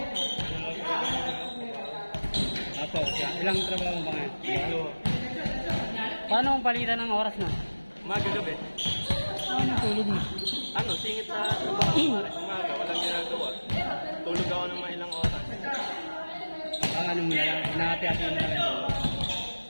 Apo, ilang trabaho mo ba ngayon? Paano ang palitan ng oras na? Umaga gabi. Ano tulog mo? Ano, singit sa trabaho. Umaga, walang ginagawa. Tulog ako ng mga ilang oras. Ano mo na lang? Nakati-hati mo na lang tulog.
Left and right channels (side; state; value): both; inverted; correlation -1.00